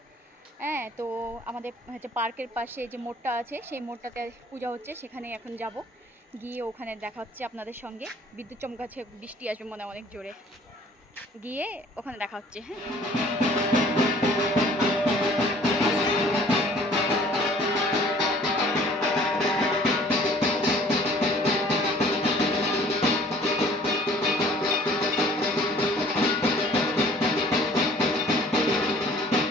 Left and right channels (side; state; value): both; normal; correlation 0.53